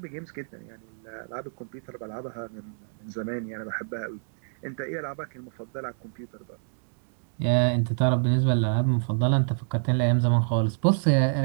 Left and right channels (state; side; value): silent; left; digital silence